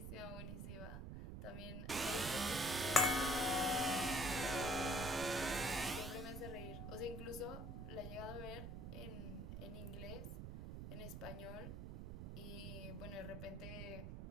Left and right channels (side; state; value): right; noise; rumble, 7 dB below the sound